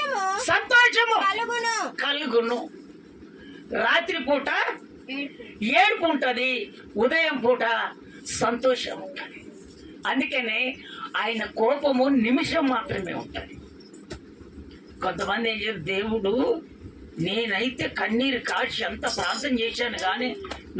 సంతోషము కలుగును. రాత్రి పూట ఏడుపు ఉంటది, ఉదయం పూట సంతోషం ఉంటది. అందుకనే ఆయన కోపము నిమిషం మాత్రమే ఉంటది. కొంతమంది ఏం చేస్తారు, దేవుడు నేనైతే కన్నీరు కాచి ఎంత ప్రార్థన చేశాను కానీ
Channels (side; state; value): both; identical; correlation 1.00